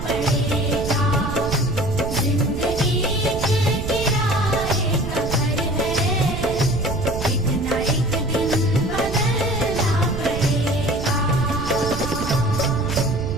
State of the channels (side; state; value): right; noise; rumble, 5 dB below the sound